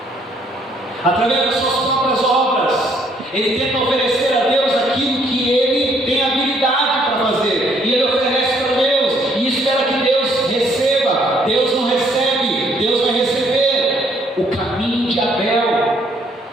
através das suas próprias obras. Ele tenta oferecer a Deus aquilo que ele tem habilidade para fazer, e ele oferece para Deus, e espera que Deus receba. Deus não recebe, Deus vai receber. O caminho de Abel.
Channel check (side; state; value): both; normal; correlation 0.66